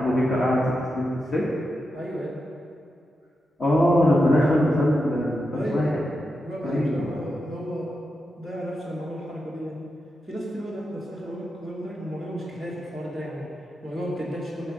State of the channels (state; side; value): normal; both; correlation 0.88